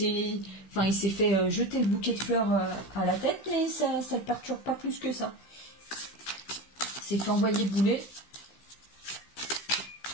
fait jeter le bouquet de fleurs à la tête, mais ça ne le perturbe pas plus que ça. C'est fait envoyer bouler.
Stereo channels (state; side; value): late; right; 15 ms